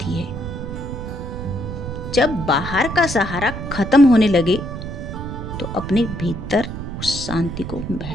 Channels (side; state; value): right; noise; rumble, 7 dB below the sound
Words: है। जब बाहर का सहारा खत्म होने लगे तो अपने भीतर उस शांति को